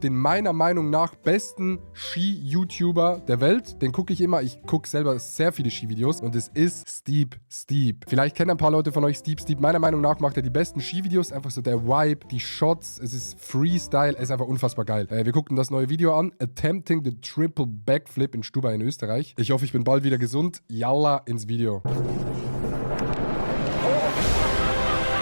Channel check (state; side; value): inverted; both; correlation -1.00